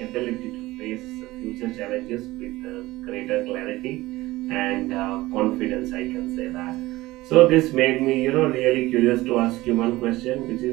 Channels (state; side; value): quieter; left; 18.6 dB